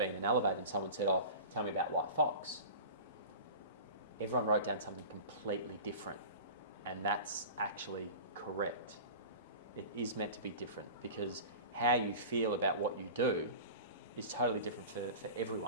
in an elevator and someone said, oh, tell me about White Fox. Everyone wrote down something completely different, and that's actually correct. It is meant to be different because how you feel about what you do is totally different for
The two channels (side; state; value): both; inverted; correlation -0.35